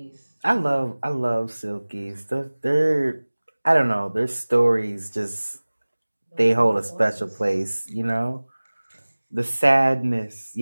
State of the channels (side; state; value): both; inverted; correlation -1.00